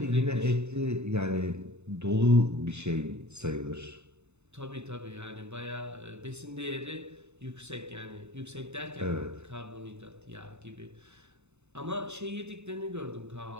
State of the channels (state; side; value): late; left; 0.82 ms